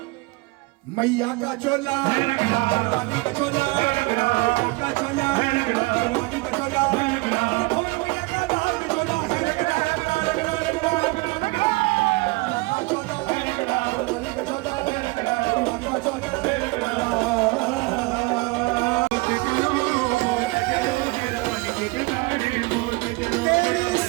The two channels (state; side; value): quieter; left; 24.7 dB